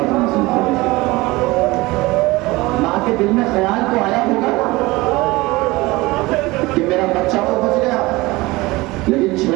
نازل کرے۔ ماں کے دل میں خیال تو آیا ہوگا کہ میرا بچہ تو بچ گیا، لیکن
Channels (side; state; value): left; quieter; 21.3 dB